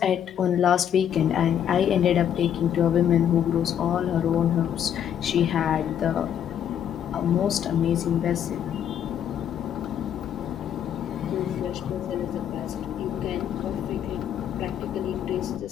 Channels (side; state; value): right; quieter; 9.4 dB